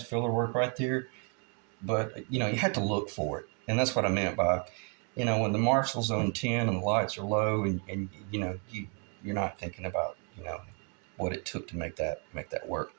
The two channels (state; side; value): quieter; left; 39.0 dB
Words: filler work right there, but you have to look for it, and that's what I meant by, when the Marshall's on 10 and the lights are low, and you're not thinking about what it took to make that work.